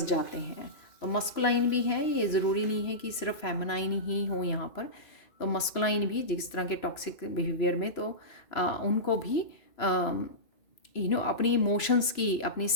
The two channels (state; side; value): late; right; 3.0 ms